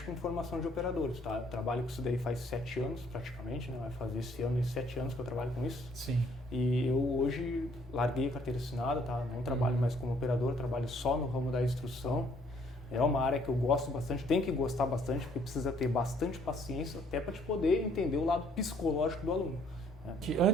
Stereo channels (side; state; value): both; normal; correlation 0.64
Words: com formação de operadores, tá? Eu trabalho com isso daí faz 7 anos praticamente, né? Vai fazer esse ano 7 anos que eu trabalho com isso. Sim. E eu hoje larguei a carteira assinada, tá? Não trabalho mais como operador, trabalho só no ramo da instrução. É uma área que eu gosto bastante, tem que gostar bastante, porque precisa ter bastante paciência até para te poder entender o lado psicológico do aluno.